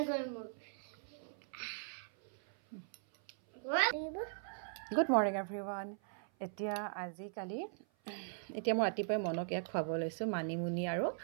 গেল মোৰ গুড মৰ্ণিং এভৰিৱান এতিয়া আজিকালি এতিয়া মই ৰাতিপুৱাই মনক ইয়াক খুৱাব লৈছোঁ মানিমুনি আৰু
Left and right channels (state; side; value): silent; left; 52 dB below the other